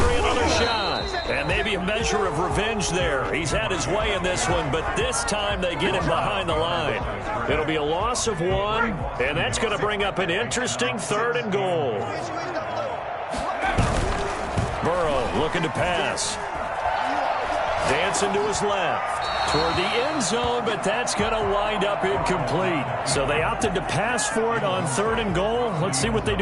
another shot. And maybe a measure of revenge there. He's had his way in this one, but this time they get him behind the line. It'll be a loss of 1, and that's going to bring up an interesting third and goal. Burrow looking to pass. Dancing to his left. Toward the end zone, but that's going to wind up incomplete. So they opted to pass for it on third and goal. Let's see what they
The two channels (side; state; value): both; identical; correlation 1.00